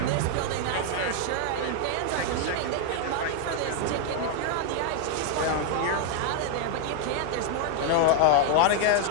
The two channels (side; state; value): both; different; correlation 0.00